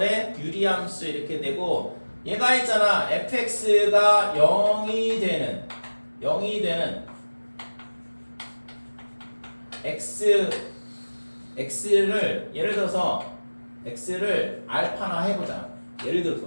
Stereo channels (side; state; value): both; inverted; correlation -1.00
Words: 유리함수 이렇게 되고 얘가 있잖아 fx가 0이 되는 x를 예를 들어서 x를 알파나 해보자. 예를